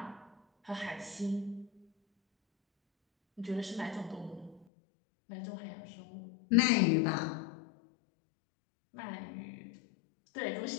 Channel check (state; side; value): drops out; right; at 4.7 s